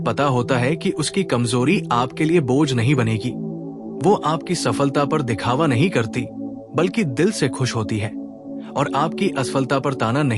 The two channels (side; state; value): both; identical; correlation 1.00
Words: होता है कि उसकी कमजोरी आपके लिए बोझ नहीं बनेगी। वो आपकी सफलता पर दिखावा नहीं करती बल्कि दिल से खुश होती है, और आपकी असफलता पर ताना